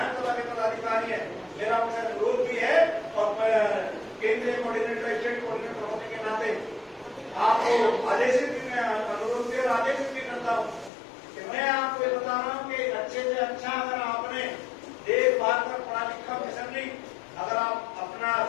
के पदाधिकारी हैं, मेरा उनसे अनुरोध भी है और केंद्रीय कोऑर्डिनेटर, स्टेट कोऑर्डिनेटर होने के नाते आपको आदेशित भी मैं अनुरोध भी और आदेशित भी करता हूँ कि मैं आपको ये बता रहा हूँ कि अच्छे से अच्छा अगर आपने देखभाल कर पढ़ा लिखा मिशनरी अगर आप अपना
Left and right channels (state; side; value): drops out; right; at 10.9 s